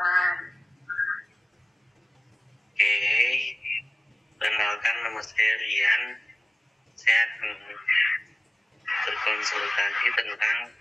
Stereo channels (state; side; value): normal; both; correlation 0.96